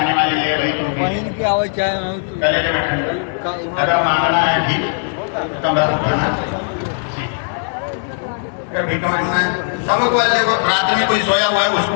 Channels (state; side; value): silent; right; digital silence